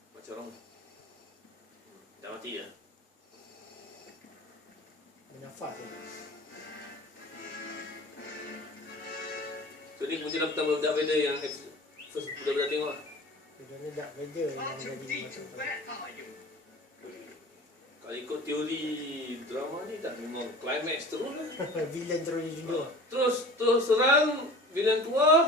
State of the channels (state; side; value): normal; both; correlation 0.40